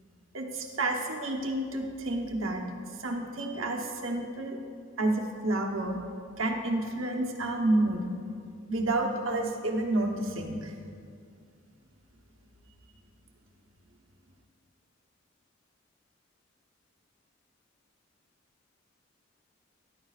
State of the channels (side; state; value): both; normal; correlation 0.53